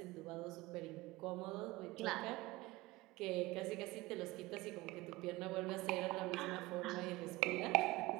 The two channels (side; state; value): left; quieter; 20.8 dB